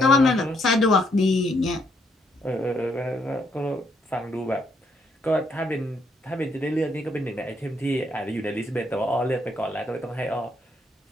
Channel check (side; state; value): both; normal; correlation 0.73